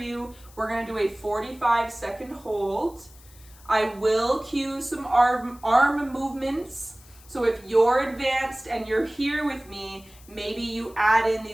We're gonna do a 45-second hold. I will cue some arm movements. So if you're advanced and you're here with me, maybe you add in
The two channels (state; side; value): noise; left; hiss, 24 dB below the sound